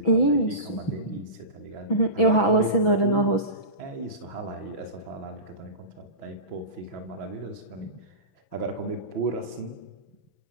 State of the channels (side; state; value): right; late; 6.1 ms